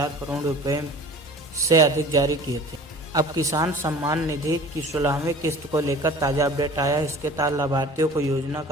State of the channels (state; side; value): normal; both; correlation 0.44